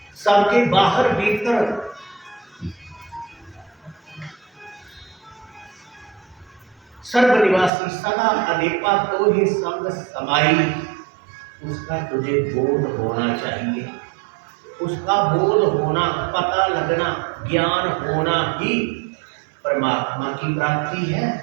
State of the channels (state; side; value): drops out; left; at 7.7 s